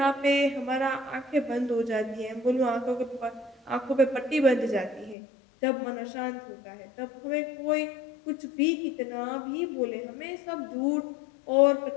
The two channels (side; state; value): right; drops out; at 5.2 s